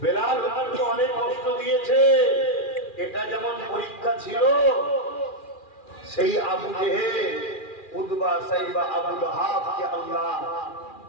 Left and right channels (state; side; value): late; right; 2.4 ms